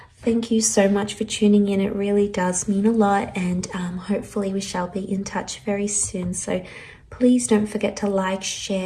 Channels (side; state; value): both; identical; correlation 1.00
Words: Thank you so much for tuning in. It really does mean a lot, and hopefully we shall be in touch very soon. So please don't forget to like,